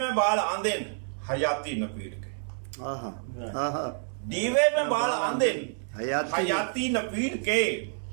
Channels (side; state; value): left; silent; 59 dB below the other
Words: بال آندن حیاتی نپیر کے، ڈیوے میں بال آندن حیاتی نپیر کے،